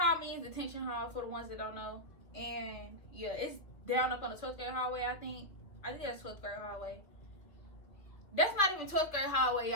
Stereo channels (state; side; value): late; right; 2.3 ms